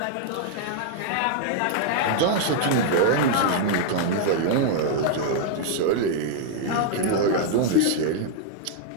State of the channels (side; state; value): both; different; correlation -0.01